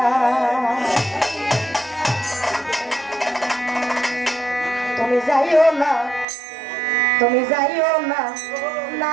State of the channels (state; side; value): drops out; left; at 6.2 s